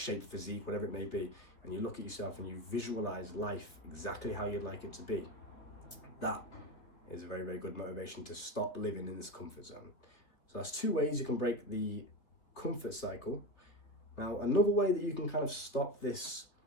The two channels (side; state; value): right; late; 3.6 ms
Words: physique, whatever it may be, and you look at yourself and you visualize life exactly how you'd like it to be, that is a very, very good motivation to stop living in this comfort zone. So that's 2 ways you can break the comfort cycle. Now, another way that you can kind of stop this